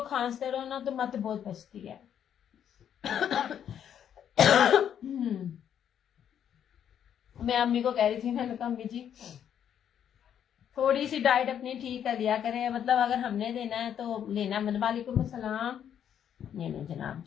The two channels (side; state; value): right; quieter; 9.2 dB